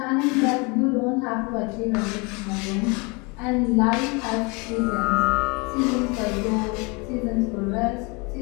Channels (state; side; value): quieter; right; 29.3 dB